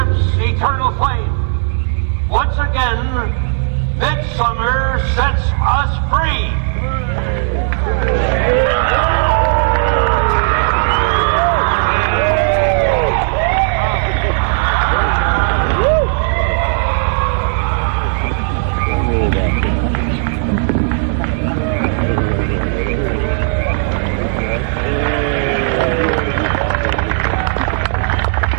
eternal flame. Once again, midsummer sets us free.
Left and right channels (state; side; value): silent; left; digital silence